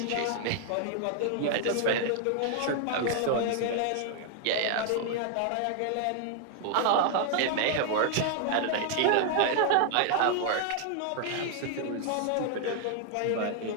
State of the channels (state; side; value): different; both; correlation 0.00